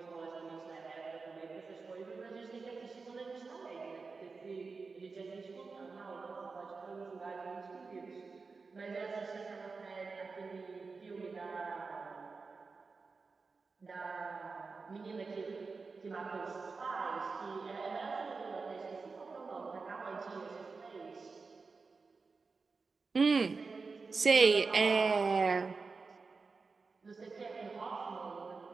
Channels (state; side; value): quieter; left; 4.4 dB